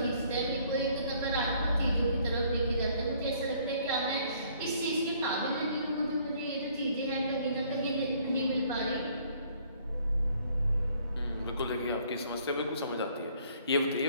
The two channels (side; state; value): both; inverted; correlation -0.61